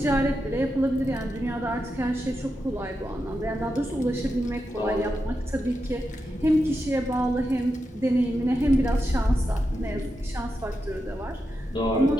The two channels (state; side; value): normal; both; correlation 0.87